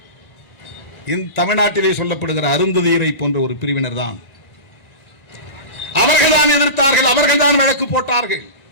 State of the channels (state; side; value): late; right; 1.4 ms